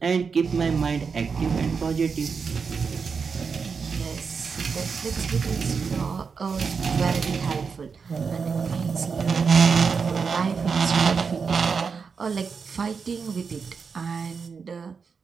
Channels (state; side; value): quieter; left; 5.5 dB